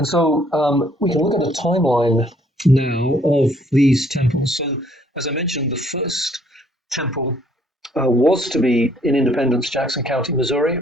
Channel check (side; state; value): both; normal; correlation 0.64